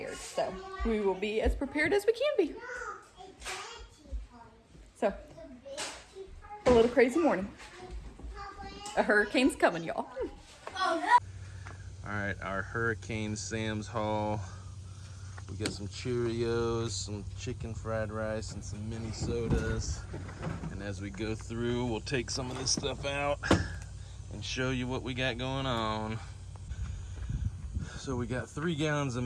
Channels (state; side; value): identical; both; correlation 1.00